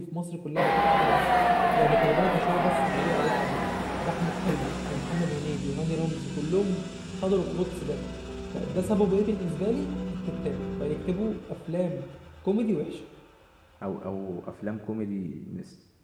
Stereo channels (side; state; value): both; identical; correlation 1.00